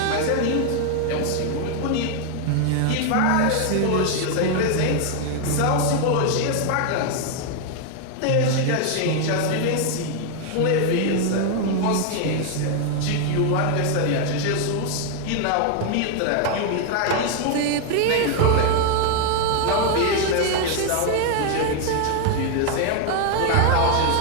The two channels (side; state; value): both; different; correlation 0.00